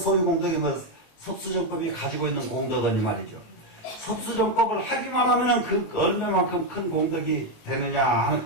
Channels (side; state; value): right; late; 19 ms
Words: 뭐 섭수정법이 가지고 있는 공덕은 이 말이죠. 섭수정법을 하기만 하면은 그 얼마만큼 큰 공덕이 되느냐